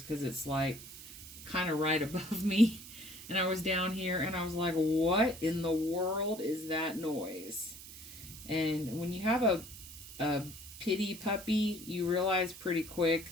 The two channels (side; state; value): right; noise; hiss, 14 dB below the sound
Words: because it's like kind of right above me. And I was down here and I was like, what in the world is that noise? And when you have a pity puppy, you realize pretty quick